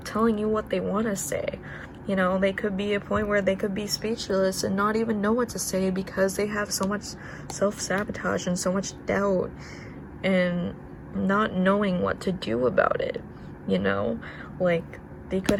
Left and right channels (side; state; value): both; identical; correlation 1.00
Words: telling you what they want to say. You know, they could be a point where they could be speechless and not even know what to say because they have so much self-sabotage and so much doubt and not knowing what to do about it, you know? Like, they could